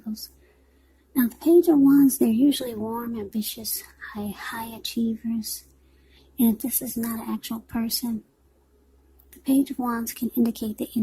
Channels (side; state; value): both; identical; correlation 1.00